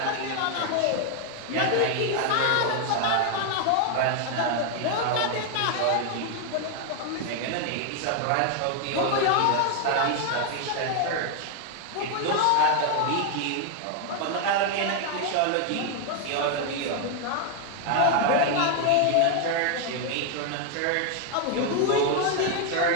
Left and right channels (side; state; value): both; different; correlation 0.00